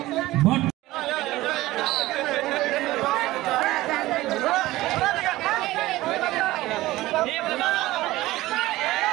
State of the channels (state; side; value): quieter; left; 17.6 dB